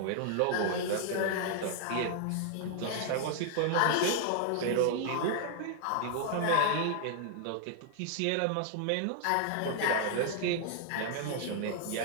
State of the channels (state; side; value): different; both; correlation 0.00